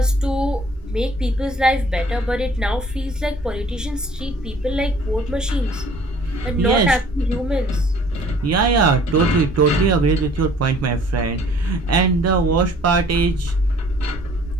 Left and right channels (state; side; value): normal; both; correlation 0.54